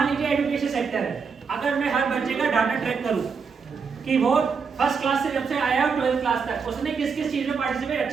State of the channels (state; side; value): quieter; left; 5.6 dB